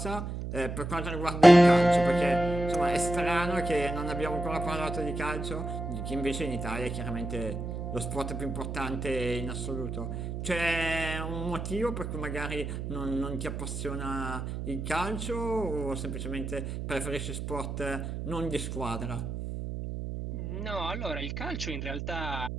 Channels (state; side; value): noise; right; hum, 5 dB below the sound